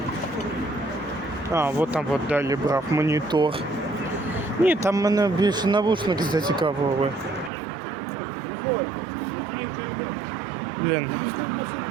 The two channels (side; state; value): left; drops out; at 7.5 s